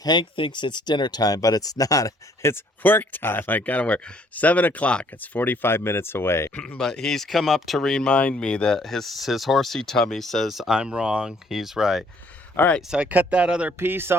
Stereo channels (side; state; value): both; normal; correlation 0.63